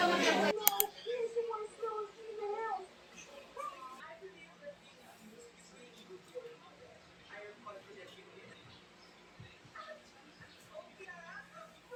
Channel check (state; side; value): identical; both; correlation 1.00